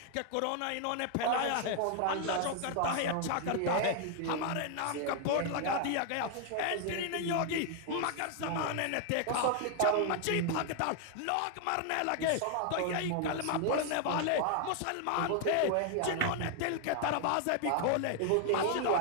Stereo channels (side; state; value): both; different; correlation 0.00